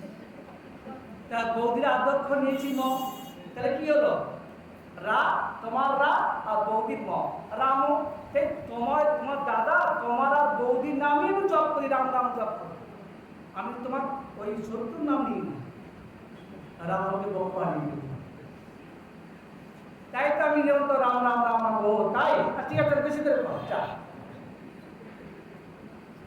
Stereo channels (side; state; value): both; identical; correlation 1.00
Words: তা বৌদির আদ্যক্ষর নিয়েছি ম, তাহলে কি হলো? রা তোমার রা আর বৌদির ম রামু। তোমার তোমার দাদা তোমার আর বৌদির নামই আমি জপ করি, রাম রাম জপ করি। আমি তোমার ওই শত্রুর নাম নিই না, রাম আমাকে বক্ষ আনিয়ে। তাই তো আমি যেমন তো রাম রাম রাম রাম ও তাই। ঠিক আছে, বেশি করে